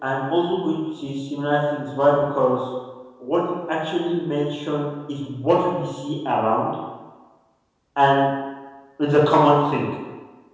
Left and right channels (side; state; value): both; identical; correlation 1.00